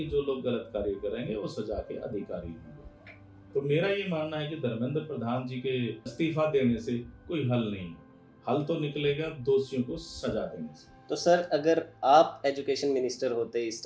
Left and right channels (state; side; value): identical; both; correlation 1.00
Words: जो लोग गलत कार्य करेंगे वो सजा के अधिकारी होंगे। तो मेरा ये मानना है कि धर्मेंद्र प्रधान जी के इस्तीफा देने से कोई हल नहीं, हल तो निकलेगा दोषियों को सजा देने से। तो सर, अगर आप एजुकेशन मिनिस्टर होते इस